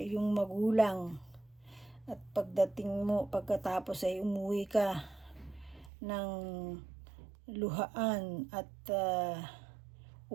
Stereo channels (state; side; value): drops out; left; at 5.9 s